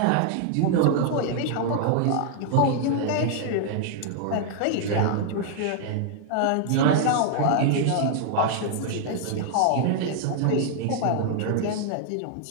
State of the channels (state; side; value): different; both; correlation 0.00